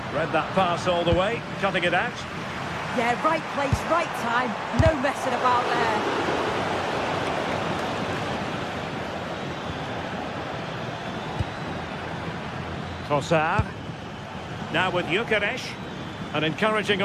Read that pass all the way, cutting it out. Yeah, right place, right time. No messing about there. Trossard. Now with Gyökeres. An encouraging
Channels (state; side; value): identical; both; correlation 1.00